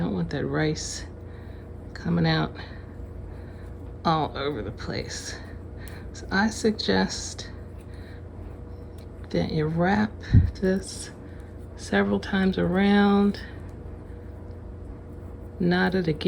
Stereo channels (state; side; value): identical; both; correlation 1.00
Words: want that rice coming out all over the place. So I suggest that you wrap this several times around, knot it